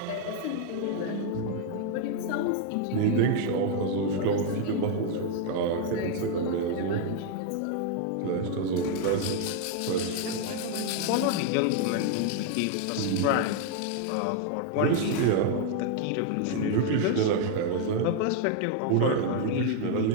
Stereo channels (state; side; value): different; both; correlation 0.00